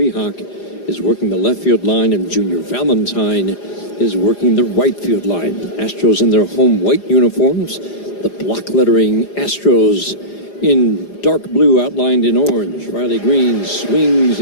is working the left field line, and Junior Valentine is working the right field line. Astros in their home white uniforms. The block lettering Astros in dark blue outlined in orange. Riley Greene swings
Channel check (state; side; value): late; right; 4.9 ms